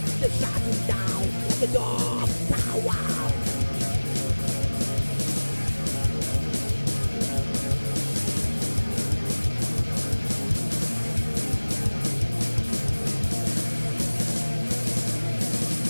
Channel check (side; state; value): both; inverted; correlation -1.00